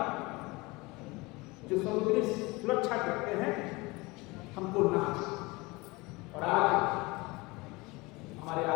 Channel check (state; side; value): quieter; right; 23.8 dB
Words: जो समुद्री सुरक्षा करते हैं हमको नाच। और आज हमारे